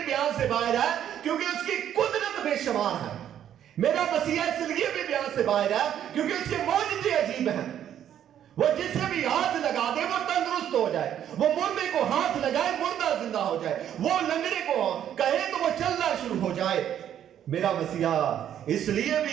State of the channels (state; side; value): quieter; left; 10.2 dB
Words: बयान से बाहर है क्योंकि उसकी कुदरत बेशुमार है। मेरा मसीहा इसलिए भी बयान से बाहर है क्योंकि उसके मौजज़े अजीब हैं। वो जिसे भी हाथ लगा दे वो तंदुरुस्त हो जाए, वो मुर्दे को हाथ लगाए मुर्दा जिंदा हो जाए, वो लंगड़े को कहे तो वो चलना शुरू हो जाए। मेरा मसीहा इसलिए